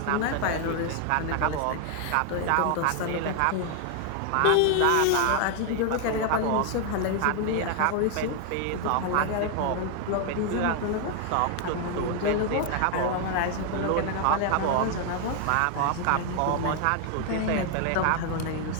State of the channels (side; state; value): both; different; correlation 0.00